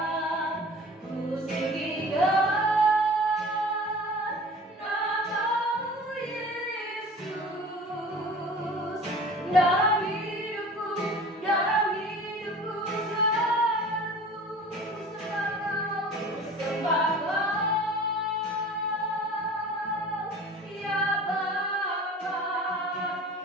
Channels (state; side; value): normal; both; correlation 0.42